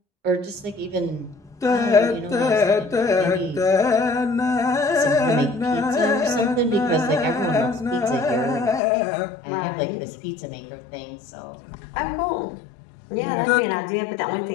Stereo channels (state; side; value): drops out; right; at 8.8 s